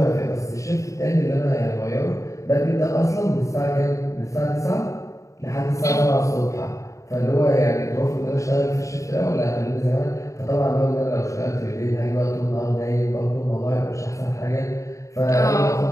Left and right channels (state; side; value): late; right; 0.15 ms